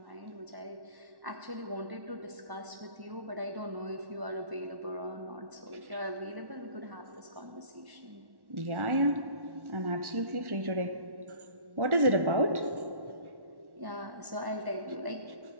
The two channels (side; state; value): left; late; 1.1 ms